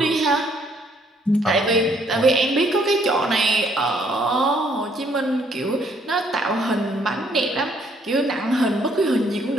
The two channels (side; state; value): both; normal; correlation 0.66